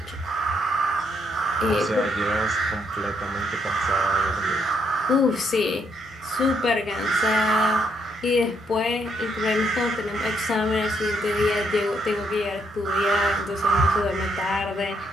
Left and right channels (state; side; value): normal; both; correlation 0.74